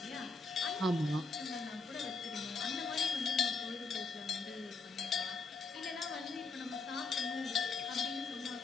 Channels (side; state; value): right; quieter; 4.0 dB